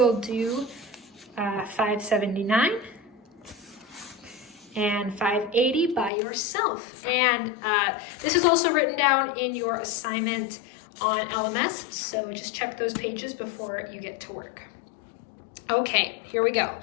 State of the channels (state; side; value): drops out; right; at 6.1 s